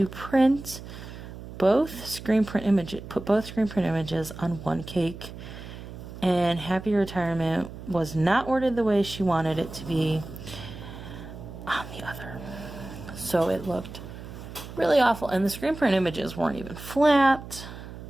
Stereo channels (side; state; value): right; noise; hum, 13 dB below the sound